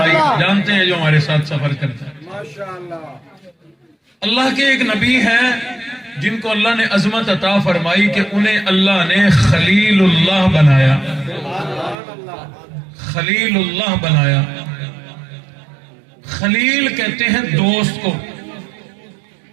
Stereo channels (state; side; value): drops out; left; at 12.0 s